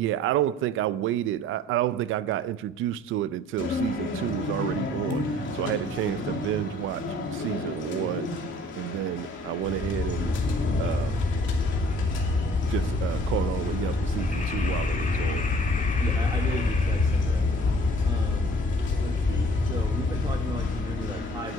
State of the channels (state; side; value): normal; both; correlation 0.52